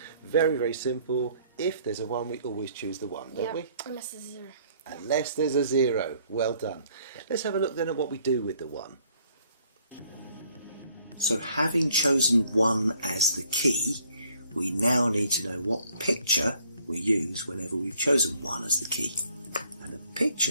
Very, very simple. If there's a 1, we always choose the 1, don't we? Unless there's a 0. Unless there's a 0. Well done. Let's have a look then at what we do with the 1. So having chosen 1 as the key, we now need to know what picture we use whenever we've chosen 1 as the key. And the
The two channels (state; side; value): inverted; both; correlation -0.62